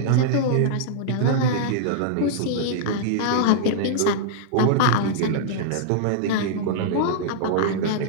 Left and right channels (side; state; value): both; different; correlation -0.01